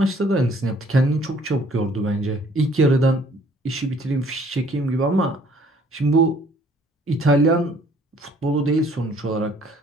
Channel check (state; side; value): normal; both; correlation 0.59